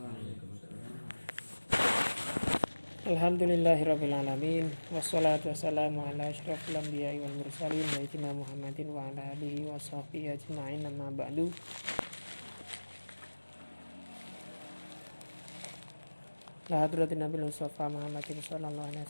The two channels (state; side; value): inverted; both; correlation -1.00